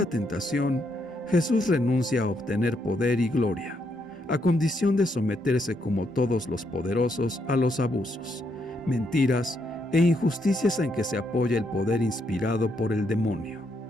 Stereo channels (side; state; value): both; normal; correlation 0.77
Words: tentación, Jesús renuncia a obtener poder y gloria, a condición de someterse como todos los poderosos a los abusos, mentiras e injusticias en que se apoya el poder inspirado por el demonio.